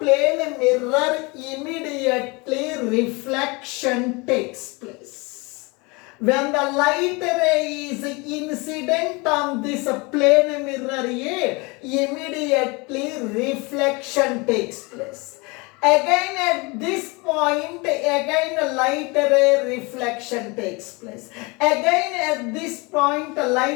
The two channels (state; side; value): quieter; right; 27.1 dB